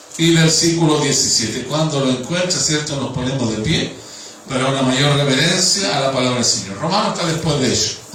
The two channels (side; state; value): both; identical; correlation 1.00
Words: y versículo 17. Cuando lo encuentre, ¿cierto?, nos ponemos de pie para una mayor reverencia a la palabra del Señor. Romanos está después de ello,